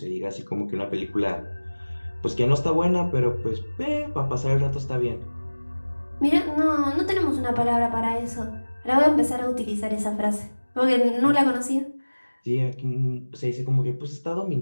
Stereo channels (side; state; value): both; inverted; correlation -1.00